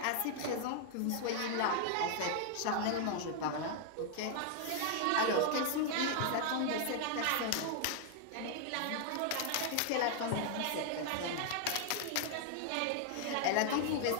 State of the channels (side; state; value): both; different; correlation 0.00